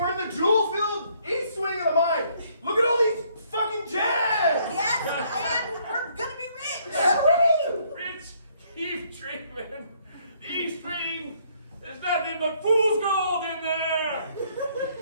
we're in the jewel-filled east wing of the mine. Look at all these fucking gems. Yes, and we're gonna be rich. Rich, keep dreaming. The East Wing, there's nothing but fool's gold in there.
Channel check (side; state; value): both; inverted; correlation -0.66